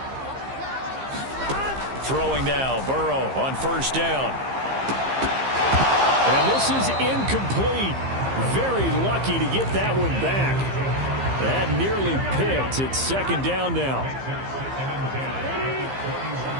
Throwing now, Burrow on first down. And this is incomplete. Very lucky to get that one back. That nearly picked. It's second down now.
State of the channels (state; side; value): late; left; 15 ms